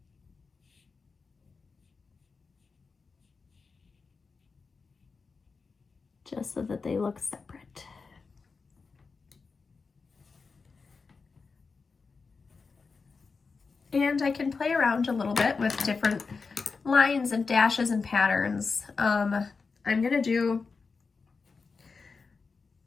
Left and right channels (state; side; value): quieter; right; 4.7 dB